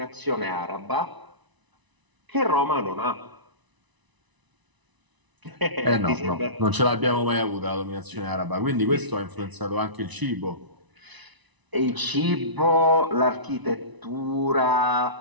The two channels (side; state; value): left; late; 1.0 ms